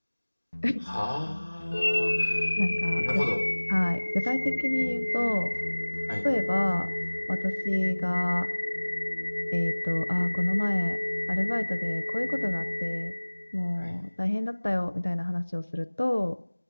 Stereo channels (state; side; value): inverted; both; correlation -1.00